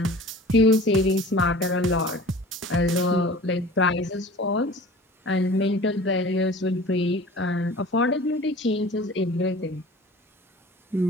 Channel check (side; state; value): both; normal; correlation 0.43